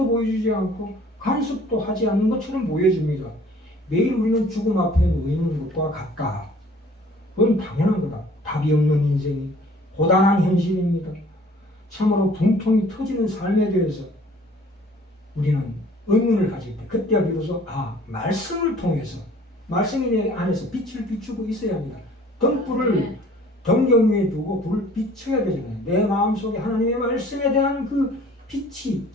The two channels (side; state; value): both; normal; correlation 0.53